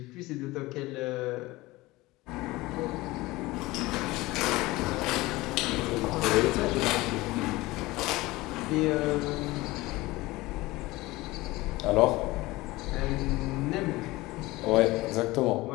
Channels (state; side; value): quieter; right; 20.1 dB